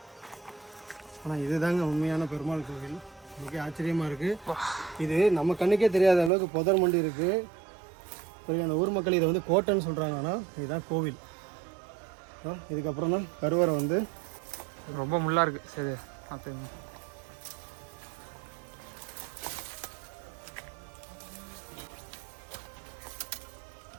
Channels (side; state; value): left; drops out; at 6.3 s